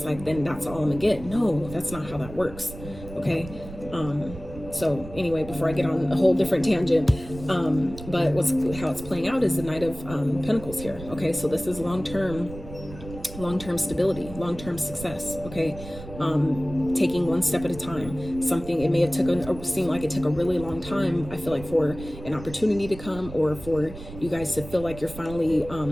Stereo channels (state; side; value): noise; right; rumble, 13 dB below the sound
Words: like, then that's all I'm gonna get. No, that's not how that works, okay? So anyway, before I get on a whole different tangent, but how it's playing out is the Knight of Pentacles here, okay? So this is long-term stability, long-term success, okay? Taking one step at a time. Something, it may have seemed like it took a really long time, I feel like, for an opportunity to come, or for you guys to feel like you're finally